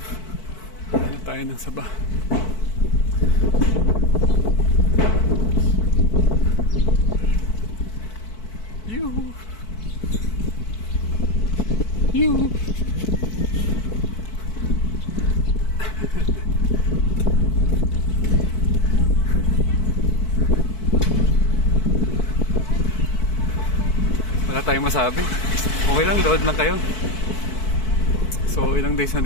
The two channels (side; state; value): right; late; 4.6 ms